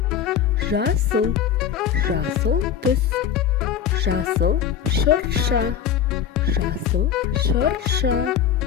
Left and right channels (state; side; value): quieter; right; 8.7 dB